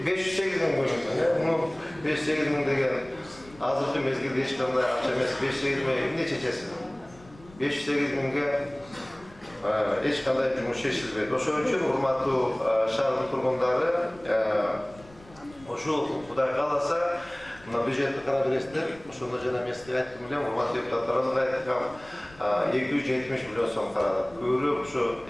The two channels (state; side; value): noise; left; rumble, 23 dB below the sound